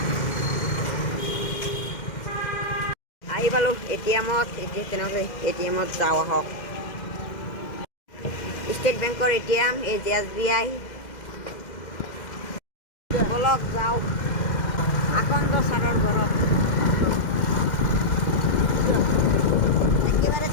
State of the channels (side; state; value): right; late; 2.1 ms